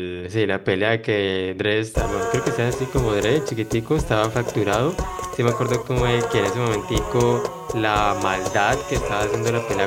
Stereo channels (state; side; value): identical; both; correlation 1.00